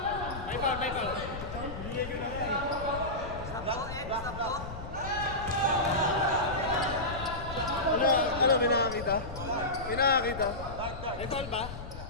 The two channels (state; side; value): noise; left; rumble, 10 dB below the sound